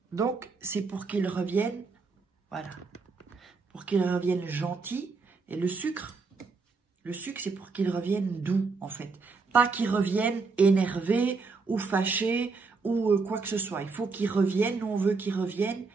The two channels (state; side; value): quieter; left; 4.4 dB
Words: donc, c'est pour qu'il revienne... Voilà, pour qu'il revienne gentil. Et le sucre, c'est pour qu'il revienne doux, en fait. Pas qu'il revienne énervé ou fâché ou quoi que ce soit. Il faut qu'il revienne, nous on veut qu'il revienne